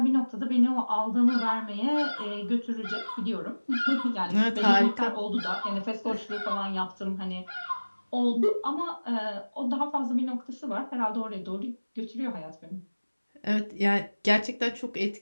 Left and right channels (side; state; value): both; inverted; correlation -1.00